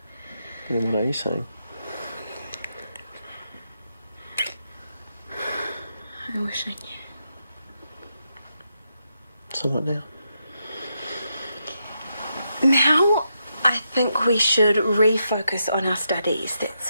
Then what are you saying? I wish I knew. So what now? Now, I think we should refocus on our studies.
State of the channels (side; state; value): both; inverted; correlation -0.83